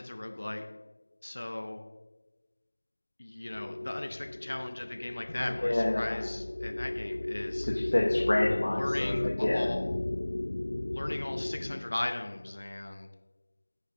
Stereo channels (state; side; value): inverted; both; correlation -1.00